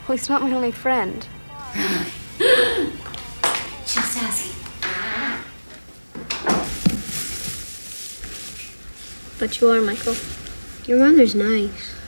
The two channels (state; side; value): inverted; both; correlation -1.00